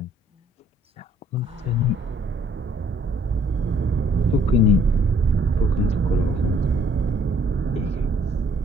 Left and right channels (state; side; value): normal; both; correlation 0.63